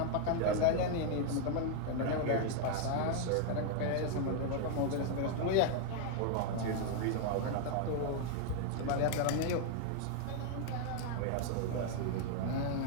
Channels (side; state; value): both; different; correlation 0.00